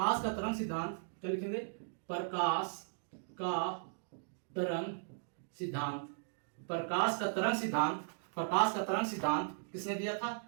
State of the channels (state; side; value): silent; left; digital silence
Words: का तरंग सिद्धांत, क्या लिखेंगे प्रकाश का तरंग सिद्धांत किसने दिया था,